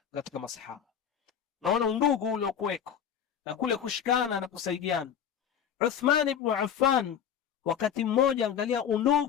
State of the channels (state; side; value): quieter; right; 8.5 dB